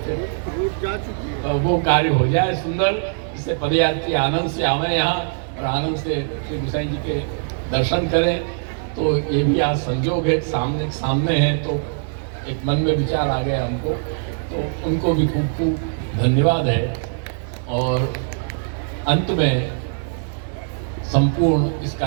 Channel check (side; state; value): left; silent; digital silence